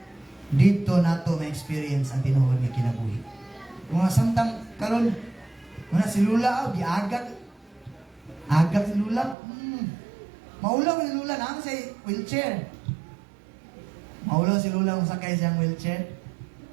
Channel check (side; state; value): left; drops out; at 9.3 s